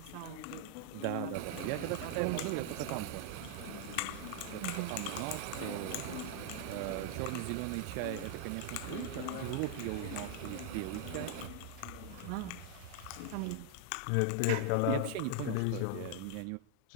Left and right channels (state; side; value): different; both; correlation 0.00